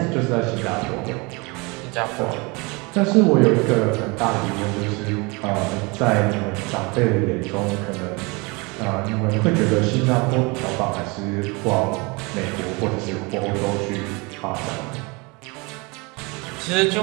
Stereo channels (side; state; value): left; quieter; 27.4 dB